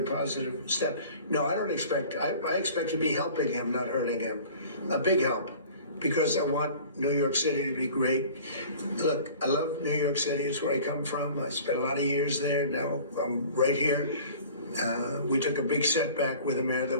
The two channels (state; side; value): inverted; both; correlation -0.45